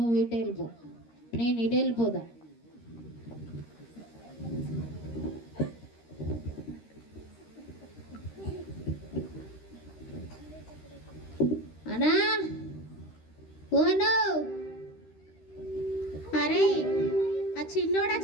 ఇటు వెళ్ళిపో, నేను ఇటు వెళ్ళిపోదా. అన్నా ఓను. అరే ఆ చిన్నోడు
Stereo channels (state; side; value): late; right; 13 ms